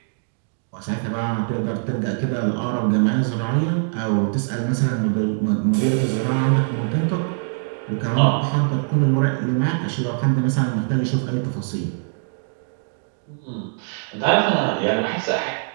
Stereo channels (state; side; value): silent; left; digital silence